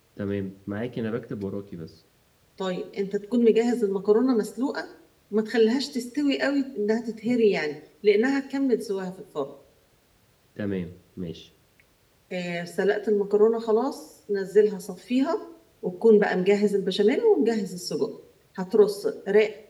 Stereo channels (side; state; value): both; identical; correlation 1.00